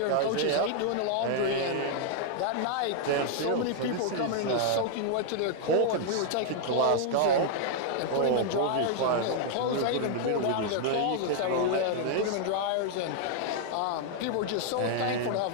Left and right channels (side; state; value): both; different; correlation 0.00